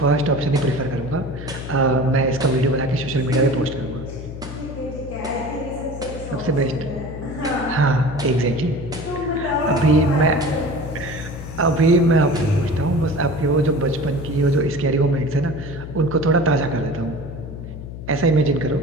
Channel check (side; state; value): left; noise; hum, 10 dB below the sound